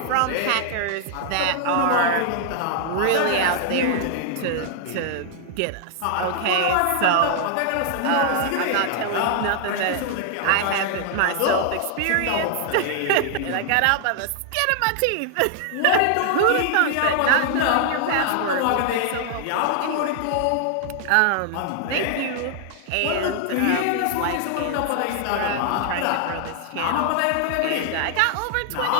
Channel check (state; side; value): different; both; correlation 0.00